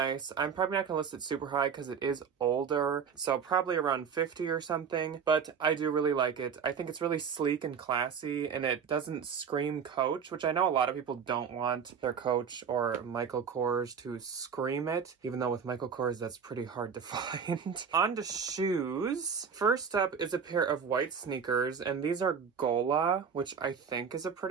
I'm probably not gonna list it super high because it is older. So probably around 50 or something, but I do really like it. I think it's really sleek and classy, and it doesn't scream Coach, which I know a lot of people don't want their Coach or Michael Kors to scream it, even though with Michael Kors that's pretty hard to find. On to shoes. First up is a pair of white sneakers, and these are Gola, which I think is a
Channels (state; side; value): quieter; left; 6.6 dB